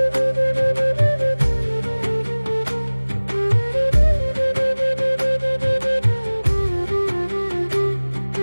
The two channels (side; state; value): both; inverted; correlation -1.00